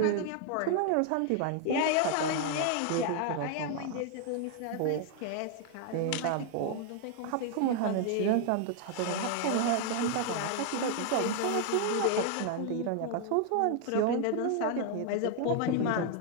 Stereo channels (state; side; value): different; both; correlation 0.00